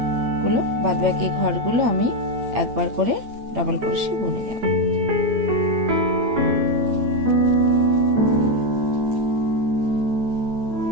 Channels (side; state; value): left; late; 8.9 ms